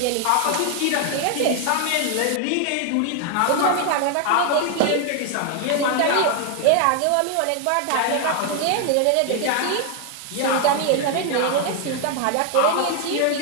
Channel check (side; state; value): both; different; correlation 0.00